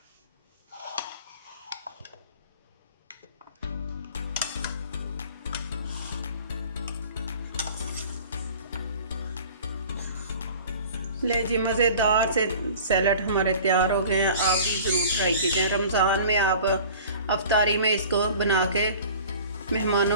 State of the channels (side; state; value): both; inverted; correlation -0.44